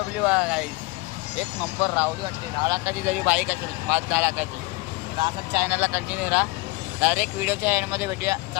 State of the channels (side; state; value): right; quieter; 24.3 dB